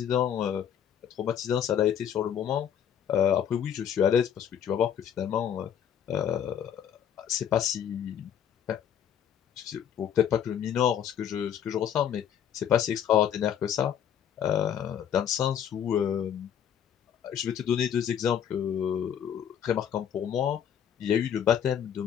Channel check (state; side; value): quieter; right; 9.2 dB